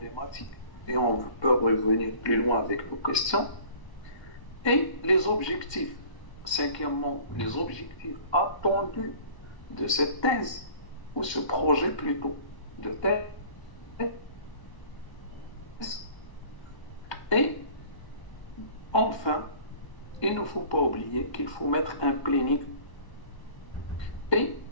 et on peut revenir plus loin avec nos questions, et les objectifs. Cinquièmement, les objectifs attendus de cette thèse, ou ce projet plutôt, de thèse. Et enfin, il ne faut pas oublier qu'il faut mettre un planning et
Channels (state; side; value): late; right; 1.3 ms